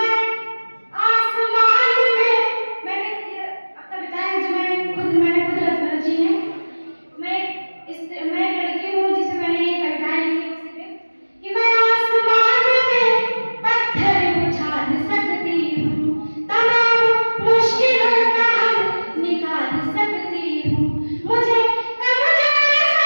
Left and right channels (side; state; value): both; inverted; correlation -1.00